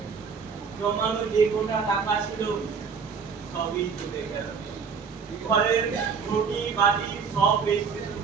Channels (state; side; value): quieter; left; 5.8 dB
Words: জমানো যে কোটা টাকা ছিল সবই চলে গেল। ঘরের রুটি বাটি সব বেচতে শুরু